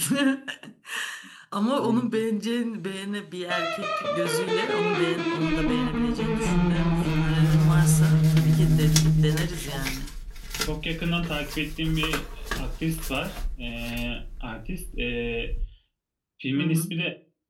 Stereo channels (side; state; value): both; identical; correlation 1.00